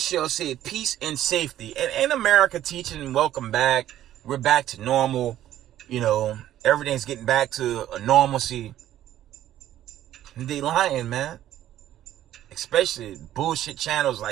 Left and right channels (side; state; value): left; quieter; 12.5 dB